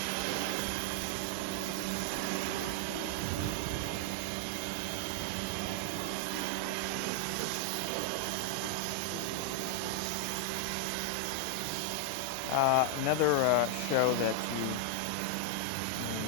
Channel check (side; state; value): both; different; correlation 0.00